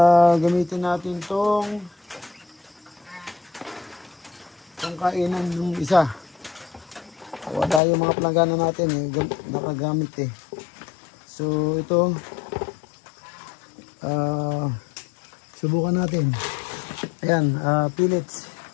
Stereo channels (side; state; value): right; drops out; at 7.8 s